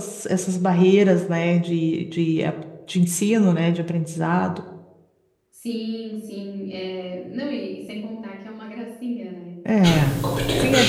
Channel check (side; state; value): both; identical; correlation 1.00